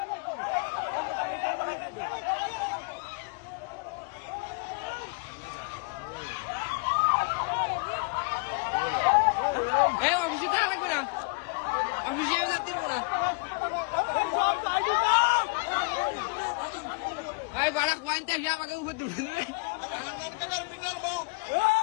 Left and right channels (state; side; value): quieter; right; 32.8 dB